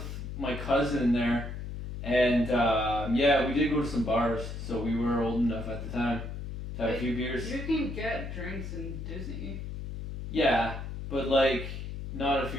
my cousin there, and yeah, we did go to some bars. So we were old enough at the time to have a few beers. You can get drinks in Disney. Yeah, but like not if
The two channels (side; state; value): left; noise; hum, 7 dB below the sound